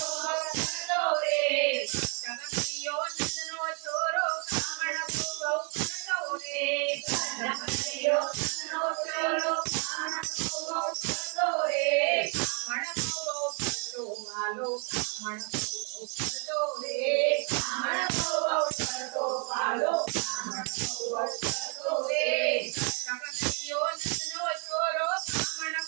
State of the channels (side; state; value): left; quieter; 37.8 dB